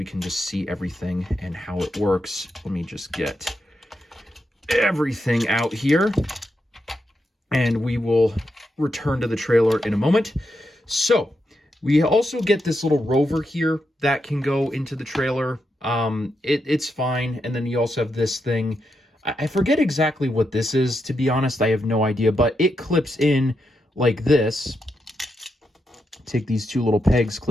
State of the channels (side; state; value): both; normal; correlation 0.84